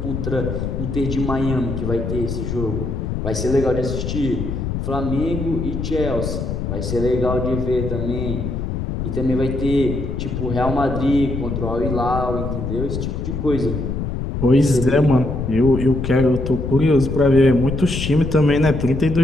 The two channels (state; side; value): noise; left; rumble, 3 dB below the sound